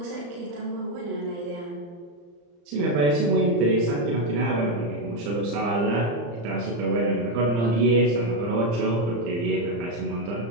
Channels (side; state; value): left; late; 35 ms